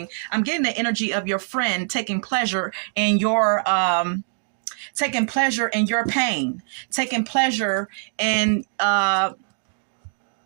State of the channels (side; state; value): left; silent; digital silence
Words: I'm getting the energy of your friend taking pleasure in your pain, taking pleasure in